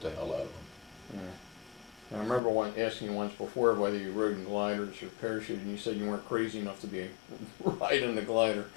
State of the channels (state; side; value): drops out; right; at 2.4 s